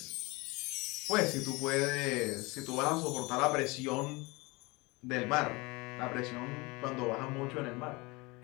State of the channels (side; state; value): right; quieter; 25.0 dB